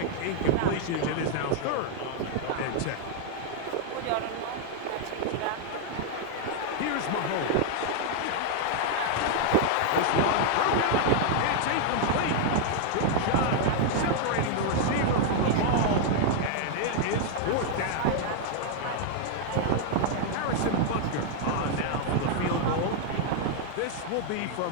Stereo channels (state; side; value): different; both; correlation 0.00